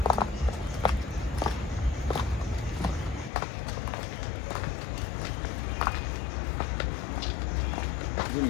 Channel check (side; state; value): right; drops out; at 3.3 s